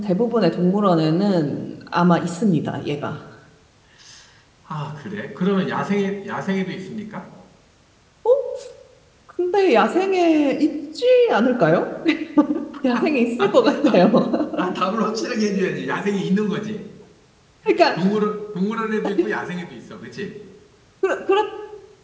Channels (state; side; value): identical; both; correlation 1.00